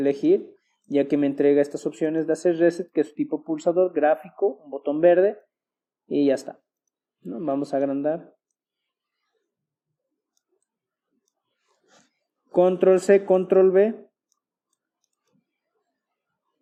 ya que me entrega estas opciones de hacer reset, que es tipo pulsador, gráfico, un botón verde, y ya está, ¿no? Vamos a agrandar. Control C, control V.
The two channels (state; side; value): identical; both; correlation 1.00